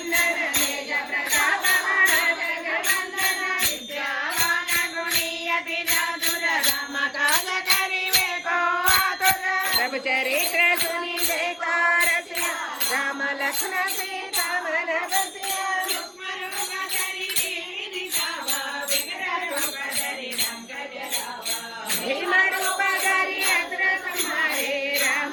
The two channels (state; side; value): identical; both; correlation 1.00